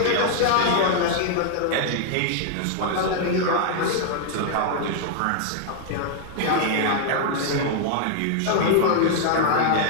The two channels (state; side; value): different; both; correlation 0.00